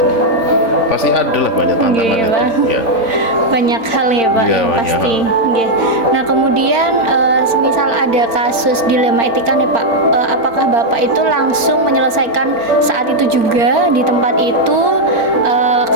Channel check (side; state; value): left; late; 4.4 ms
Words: Pasti ada lah banyak tantangan itu. Ya. Banyak hal ya Pak, Ya, yang pasti. Nah kemudian semisal ada kasus dilema etika nih Pak, apakah Bapak itu langsung menyelesaikan saat itu juga di tempat itu?